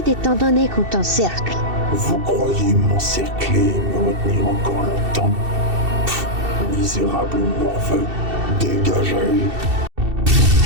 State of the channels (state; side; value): late; left; 2.7 ms